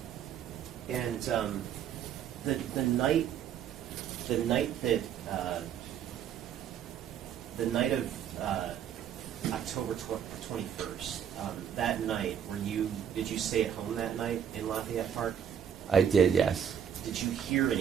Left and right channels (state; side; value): quieter; left; 8.9 dB